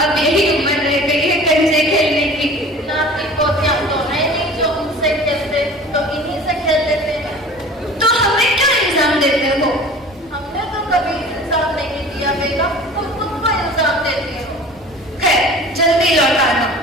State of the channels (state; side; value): normal; both; correlation 0.42